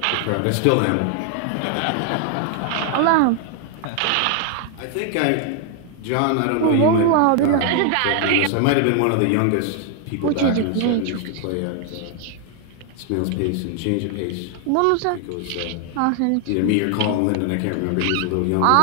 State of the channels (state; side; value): different; both; correlation 0.00